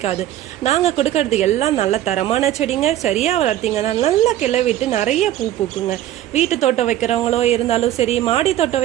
நாங்கள் கொடுக்கறது எல்லாம் நல்ல தரமான செடிங்க. சரியாக வளர்த்திங்கன்னா நல்லா கிளவிட்டு நிறைய பூ பூக்குங்க. வீட்டு தோட்டம் வைக்கிறவங்களோ இருந்தாலும் சரி, மாடி தோட்டம்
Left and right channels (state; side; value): quieter; left; 12.9 dB